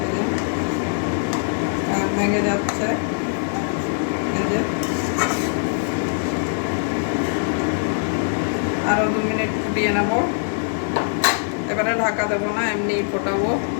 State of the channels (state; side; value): silent; right; digital silence